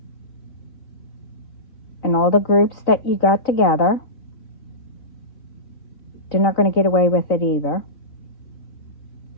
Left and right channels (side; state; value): right; late; 3.9 ms